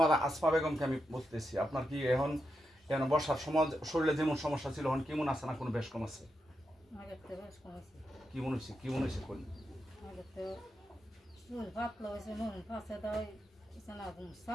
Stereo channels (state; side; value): normal; both; correlation 0.86